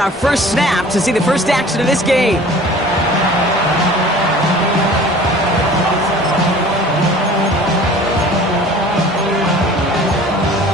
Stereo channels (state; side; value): normal; both; correlation 0.46